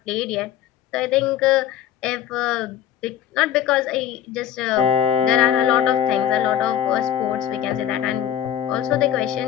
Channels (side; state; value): right; quieter; 10.6 dB